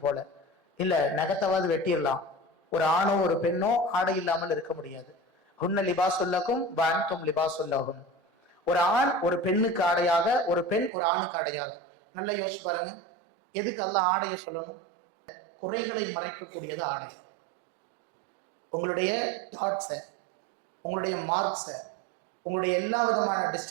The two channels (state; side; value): drops out; left; at 10.9 s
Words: போல இல்ல, நகத்தவாது வெட்டிடலாம். ஒரு ஆணோ ஒரு பெண்ணோ ஆடை இல்லாமல் இருக்க முடியாது. ஹுன்ன லிபாசுல்லகும் வஅன்தும் லிபாசுல்லஹும். ஒரு ஆண் ஒரு பெண்ணுக்கு ஆடையாக, ஒரு பெண் ஒரு ஆணுக்கு ஆடையாக. நல்லா யோசிச்சு பாருங்க, எதுக்கு அல்லாஹ் ஆடையை சொல்லணும்? குறைகளை மறைக்கக்கூடியது ஆடை. உங்களுடைய தாட்ஸ, உங்களுடைய மார்க்ஸ, உங்களுடைய எல்லா விதமான